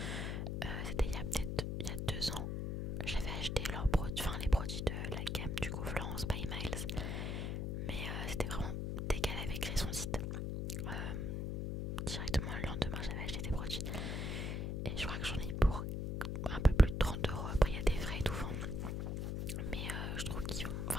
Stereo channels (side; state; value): left; noise; hum, 1 dB below the sound